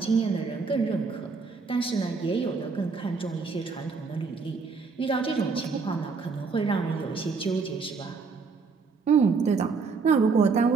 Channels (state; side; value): quieter; left; 4.8 dB